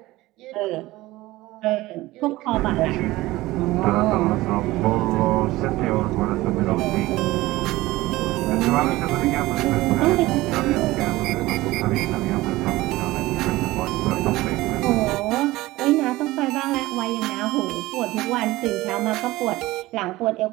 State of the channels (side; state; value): left; quieter; 18.5 dB